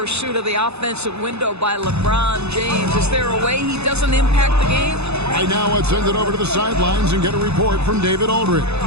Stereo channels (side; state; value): left; late; 0.80 ms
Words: of the offensive window by LeBron James. Is there a way he doesn't impact the game? Right now, let's send it over to the sidelines and get a report from David Aldridge.